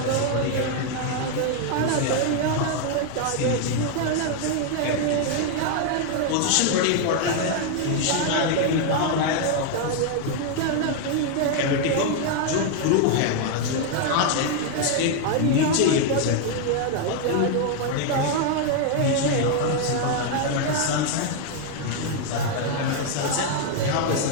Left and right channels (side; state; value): both; different; correlation 0.00